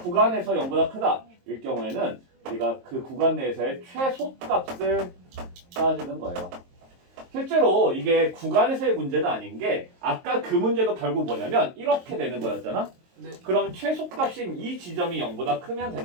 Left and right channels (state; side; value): late; left; 22 ms